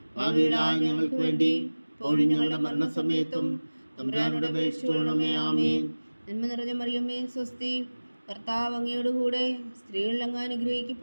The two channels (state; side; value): inverted; both; correlation -1.00